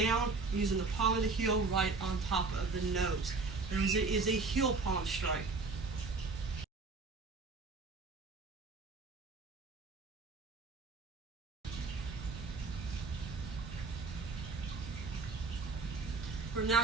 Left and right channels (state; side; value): quieter; left; 4.0 dB